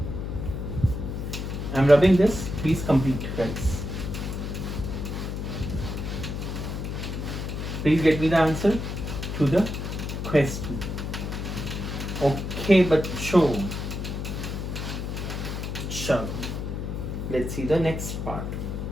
I am rubbing this, please complete guys. Please get me the answer to the question. Okay, बच्चों, चलो, let's see the next part.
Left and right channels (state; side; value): noise; left; hum, 4 dB below the sound